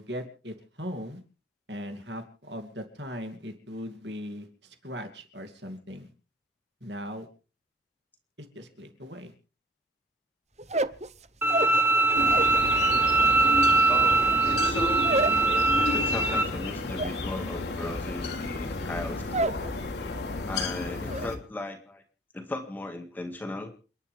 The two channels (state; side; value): normal; both; correlation 0.51